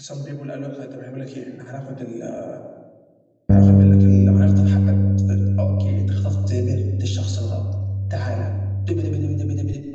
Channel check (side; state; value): both; identical; correlation 1.00